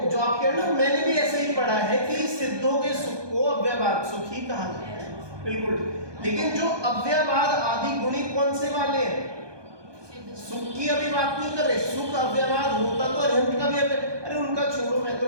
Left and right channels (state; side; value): late; left; 1.2 ms